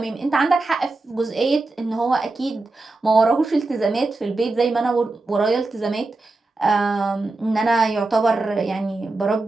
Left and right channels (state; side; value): quieter; left; 3.3 dB